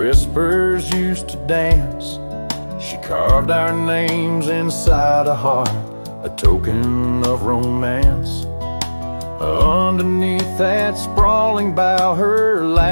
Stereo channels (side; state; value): both; inverted; correlation -1.00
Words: used to dance, she carved our names inside a heart, a token of romance. Underneath that sprawling bough, her